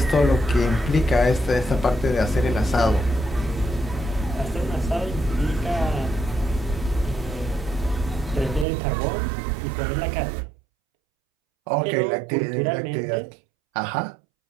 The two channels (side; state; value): left; drops out; at 8.7 s